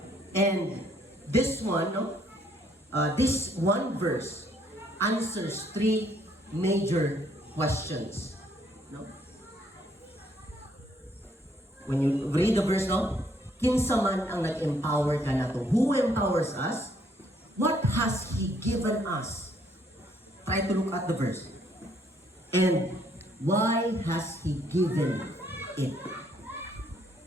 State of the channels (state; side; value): normal; both; correlation 0.67